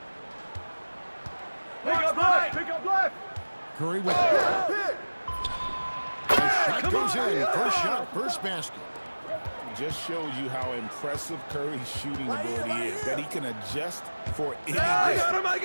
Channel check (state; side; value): inverted; both; correlation -1.00